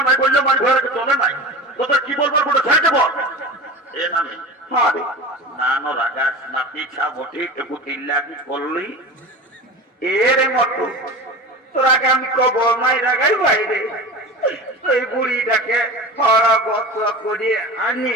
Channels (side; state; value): both; normal; correlation 0.32